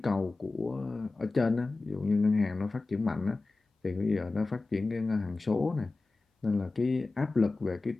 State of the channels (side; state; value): right; quieter; 3.5 dB